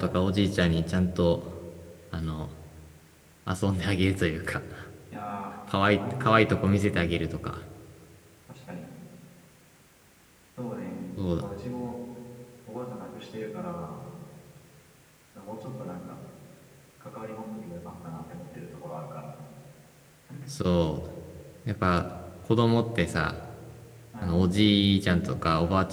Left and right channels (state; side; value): identical; both; correlation 1.00